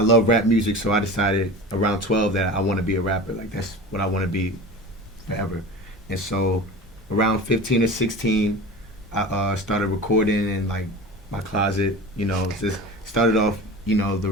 rap music, so I decided around 12 that I want to be a rapper. Like, that's what I want to be forever. And so around 15 or 16, I started recording in like my closet. You know, just started off, you know, the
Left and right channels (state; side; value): normal; both; correlation 0.33